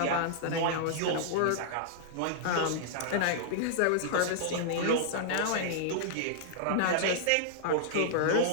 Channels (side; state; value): both; different; correlation -0.01